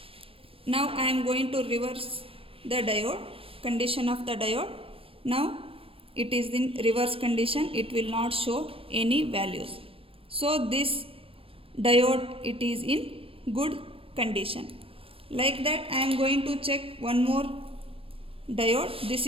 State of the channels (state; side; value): late; left; 0.27 ms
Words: Now I am going to reverse the diode, condition of the diode. Now it is in reverse condition, it will not show any values. So this diode, it is in good condition. Like that I am going to check one more diode. This